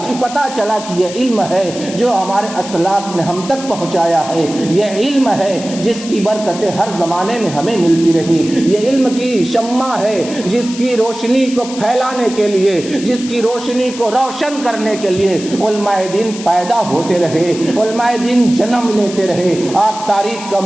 پتہ چلا کہ یہ علم ہے جو ہمارے اسلاف نے ہم تک پہنچایا ہے، یہ علم ہے جس کی برکتیں ہر زمانے میں ہمیں ملتی رہی، یہ علم کی شمع ہے جس کی روشنی کو پھیلانے کے لیے، جس کی روشنی کو روشن کرنے کے لیے علماء دین پیدا ہوتے رہے، علماء دین جنم لیتے رہے. آپ تاریخ کا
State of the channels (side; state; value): left; noise; hiss, 13 dB below the sound